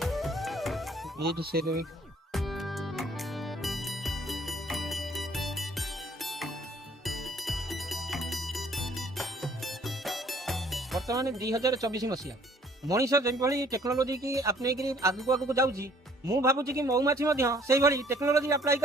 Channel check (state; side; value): normal; both; correlation 0.60